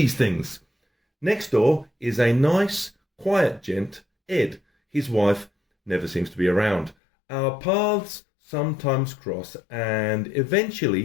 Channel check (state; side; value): drops out; right; at 7.0 s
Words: things. Next door is a nice, quiet gent, Ed. His wife never seems to be around. Our paths sometimes cross, and